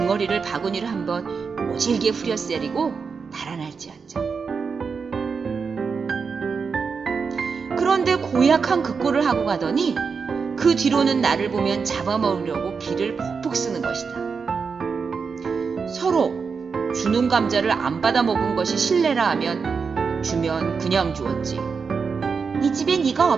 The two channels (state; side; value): quieter; left; 5.4 dB